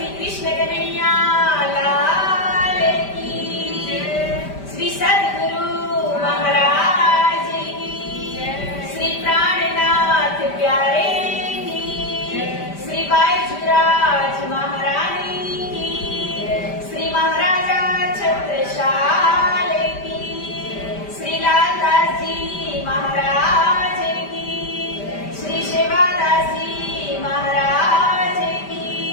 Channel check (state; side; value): late; right; 5.1 ms